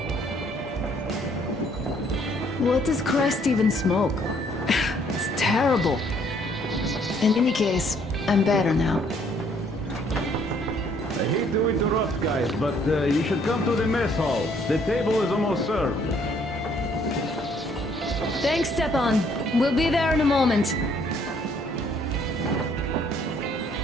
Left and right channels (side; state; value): both; normal; correlation 0.64